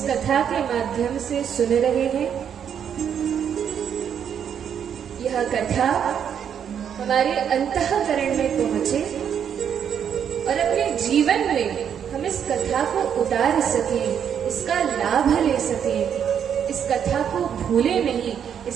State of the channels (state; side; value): quieter; left; 8.4 dB